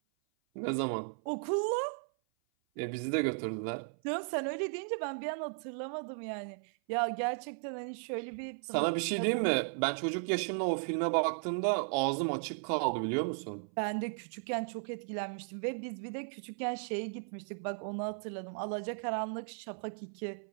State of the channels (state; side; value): silent; left; 54 dB below the other